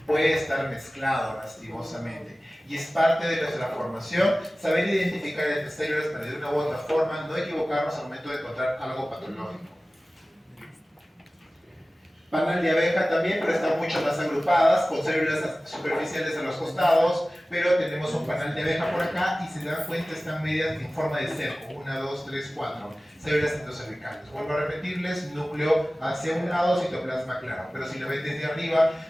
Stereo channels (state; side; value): normal; both; correlation 0.97